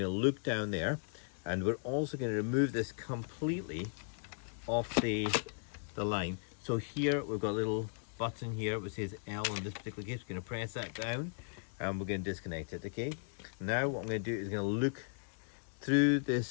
look down there, and we're also going to remove this completely off the line. So here we've got a little button here which says L in this particular case. We're going to press that down, and we're going to disconnect it. Okay, now what I'm going to do is going to look through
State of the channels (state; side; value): silent; right; digital silence